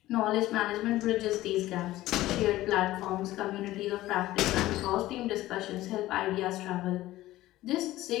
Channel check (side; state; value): right; quieter; 16.1 dB